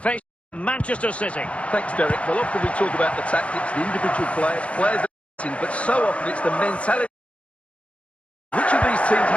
Manchester City. Thanks, Derek. Well, often we talk about the tactics, the individual players but so often it's the mentality. Which of these teams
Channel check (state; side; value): late; right; 0.063 ms